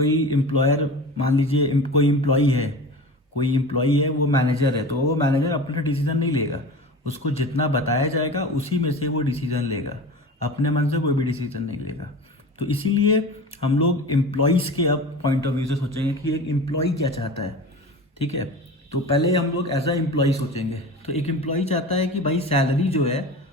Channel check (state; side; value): normal; both; correlation 0.33